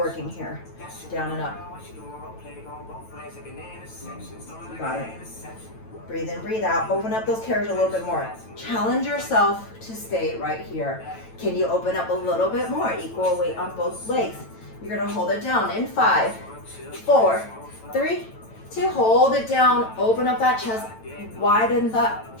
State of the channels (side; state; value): right; late; 9.0 ms